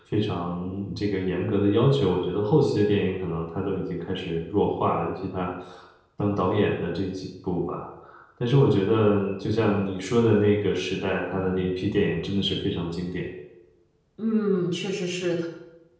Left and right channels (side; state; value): both; identical; correlation 1.00